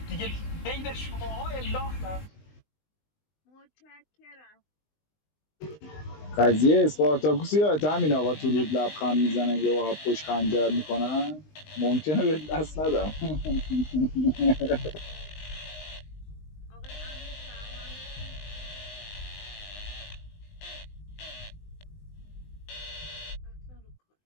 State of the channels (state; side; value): late; right; 19 ms